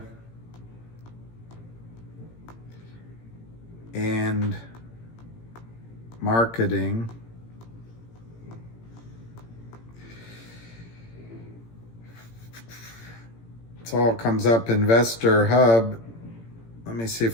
and marketing. It all comes up Investor Hub. Let me see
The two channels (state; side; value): late; right; 18 ms